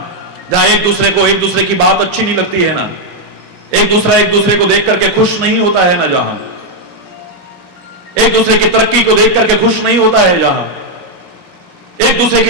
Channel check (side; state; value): both; normal; correlation 0.00